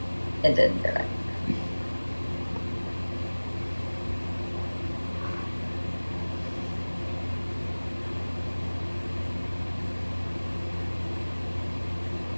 It didn't do it.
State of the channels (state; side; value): inverted; both; correlation -1.00